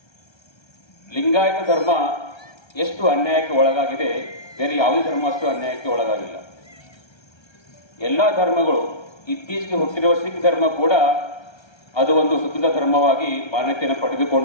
ಲಿಂಗಾಯತ ಧರ್ಮ ಎಷ್ಟು ಅನ್ಯಾಯಕ್ಕೆ ಒಳಗಾಗಿದೆ, ಬೇರೆ ಯಾವುದೇ ಧರ್ಮ ಅಷ್ಟು ಅನ್ಯಾಯಕ್ಕೆ ಒಳಗಾಗಿಲ್ಲ. ಎಲ್ಲ ಧರ್ಮಗಳು, ಇತ್ತೀಚೆಗೆ ಹುಟ್ಟಿರುವ ಸಿಖ್ ಧರ್ಮ ಕೂಡ ಅದು ಒಂದು ಸ್ವತಂತ್ರ ಧರ್ಮವಾಗಿ ಮಾನ್ಯತೆಯನ್ನು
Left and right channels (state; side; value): late; right; 1.3 ms